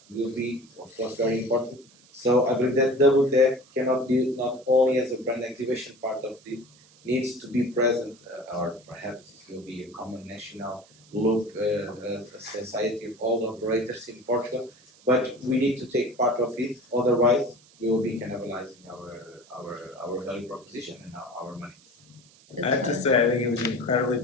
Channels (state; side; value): noise; right; hiss, 27 dB below the sound